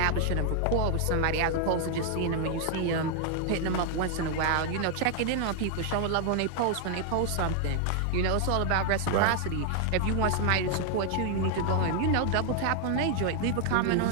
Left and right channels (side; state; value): both; different; correlation 0.00